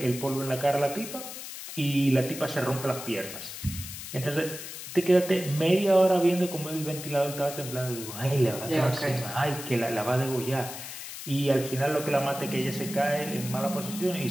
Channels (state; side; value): noise; left; hiss, 10 dB below the sound